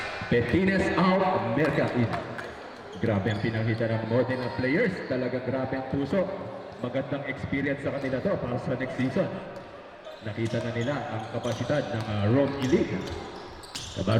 Petines out, Merca in. Grabe ang pinakita ng Modena players. Talaga grabe ang puso. Magandang experience sa kanila to para sa next season. Nakita na nila ang kapasidad ng Rome Elite.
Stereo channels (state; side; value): identical; both; correlation 1.00